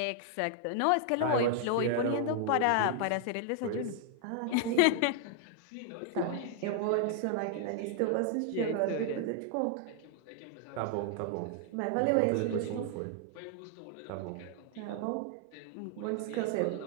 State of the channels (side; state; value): both; different; correlation 0.00